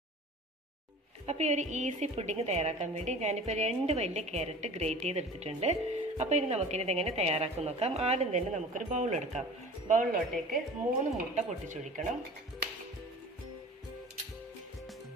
അപ്പോൾ ഈ ഒരു ഈസി പുഡിങ് തയ്യാറാക്കാൻ വേണ്ടി ഞാനിപ്പോൾ 2 വലിയ ക്യാരറ്റ് ഗ്രേറ്റ് ചെയ്തെടുത്തിട്ടുണ്ട്. അപ്പോൾ ഇനി നമുക്കിനി ഇതെങ്ങനെ തയ്യാറാക്കും നോക്കാം. ആദ്യം തന്നെ നമുക്കൊരു ബൗൾ എടുക്കാം. ബൗളിലോട്ടേക്ക് 3 മുട്ട പൊട്ടിച്ചൊഴിക്കണം.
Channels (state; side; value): normal; both; correlation 0.41